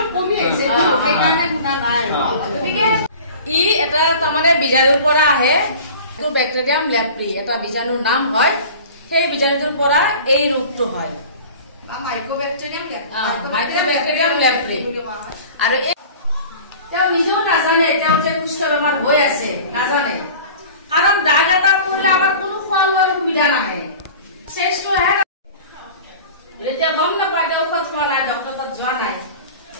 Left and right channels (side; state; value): both; inverted; correlation -0.41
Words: কমি আহিছে সেইকাৰণে গুণা নাই গতিকে ই এটা তাৰমানে বীজাণুৰ পৰা আহে এইটো বেক্টেৰিয়াম লেপ্ৰি এটা বীজাণুৰ নাম হয় সেই বীজাণুটোৰ পৰা এই ৰোগটো হয় মাইক্ৰ'বেক্টেৰিয়াম লেপ্ৰি আৰু তেওঁ নিজেও নাজানে তেওঁ যে কুষ্ঠ বেমাৰ হৈ আছে নাজানে কাৰণ দাগ এটা পৰিলে আমাৰ কোনো খোৱা লোৱাৰ সুবিধা নাহে চেষ্টো আহে এতিয়া গম নাপায় তেওঁ ঔষধ খোৱা নাই ডক্টৰৰ তাত যোৱা নাই